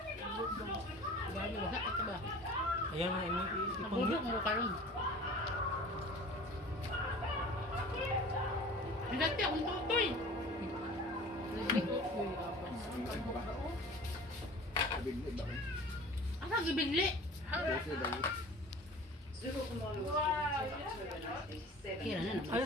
Ayan na ini Nabubok mo ka rin. Hinati akong tutoy. Bigli ba? Ano ang ibigli? Kasi dahil. Kira na naman.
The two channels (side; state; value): both; normal; correlation 0.42